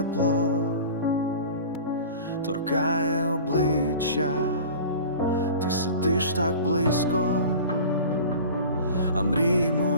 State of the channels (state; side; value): inverted; both; correlation -0.39